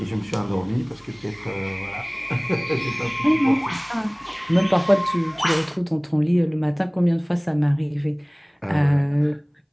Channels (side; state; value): both; identical; correlation 1.00